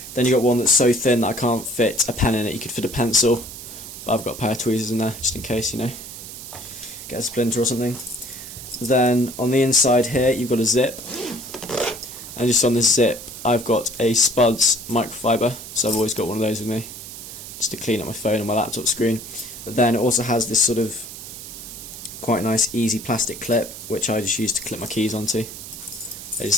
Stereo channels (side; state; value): right; noise; hiss, 12 dB below the sound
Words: Then you got one that's so thin that I can't fit a pen in it. You could fit a pencil, but I've got a pair of tweezers in there just in case, you know, get a splinter or something. Then on the inside here you've got a zip, and just on this zip I've got a Spuds microfiber, so I've always got one of those with me just to clean up my phone and my laptop screen. But then it also has this sort of quite nice easy plastic clip, which I just use to clip my keys onto. They